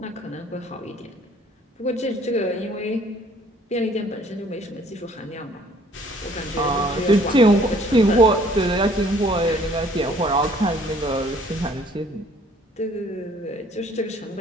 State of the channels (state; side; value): normal; both; correlation 0.58